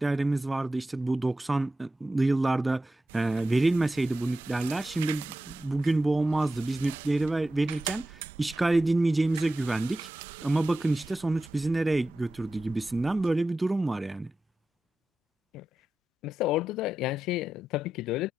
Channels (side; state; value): both; normal; correlation 0.92